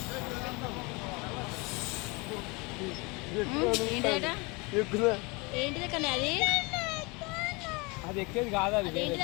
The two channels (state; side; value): quieter; right; 27.5 dB